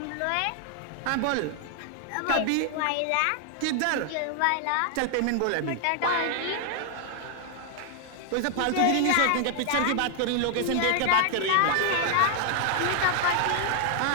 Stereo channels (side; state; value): both; different; correlation 0.00